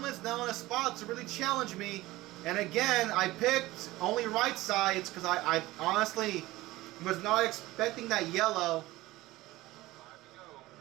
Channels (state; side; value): quieter; left; 18.3 dB